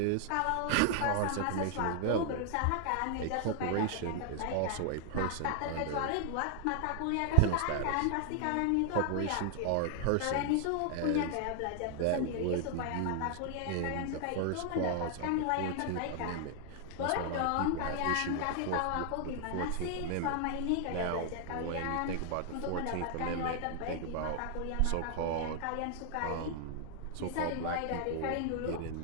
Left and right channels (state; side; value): different; both; correlation 0.00